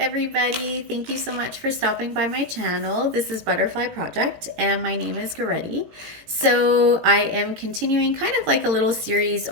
Thank you so much for stopping by my channel. This is Butterfly Project, and my name is Goretti. So I am continuing kind of like a little series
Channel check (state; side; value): late; left; 18 ms